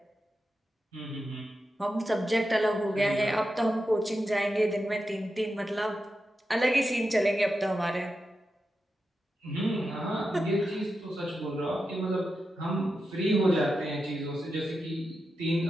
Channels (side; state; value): both; normal; correlation 0.89